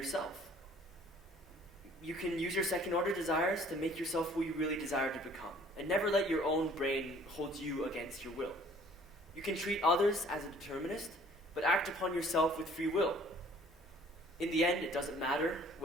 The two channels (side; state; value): both; normal; correlation 0.55